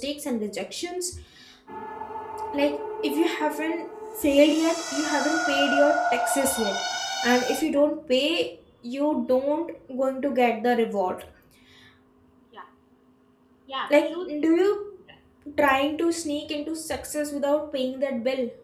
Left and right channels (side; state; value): both; identical; correlation 1.00